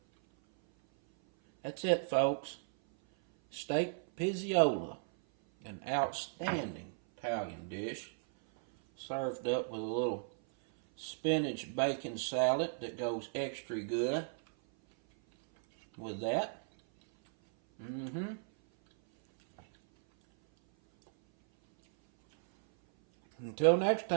That's it, folks. Steak Pizzaiola, an outstanding Italian dish, served up with a little spinach bacon salad that goes extra good with that. Until next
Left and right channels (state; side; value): silent; left; 54 dB below the other